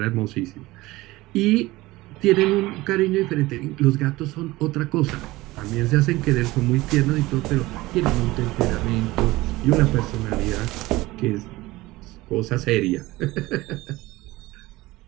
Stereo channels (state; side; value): quieter; left; 19.4 dB